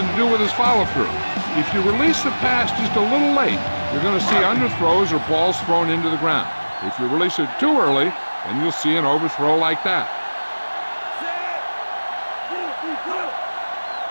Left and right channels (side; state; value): both; inverted; correlation -1.00